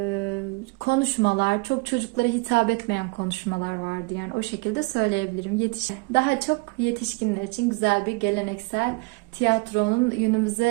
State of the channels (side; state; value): left; quieter; 26.6 dB